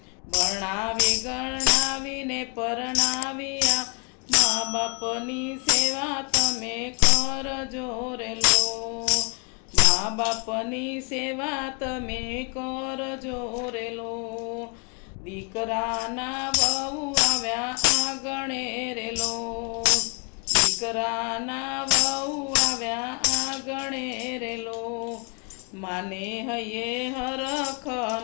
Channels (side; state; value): right; quieter; 37.0 dB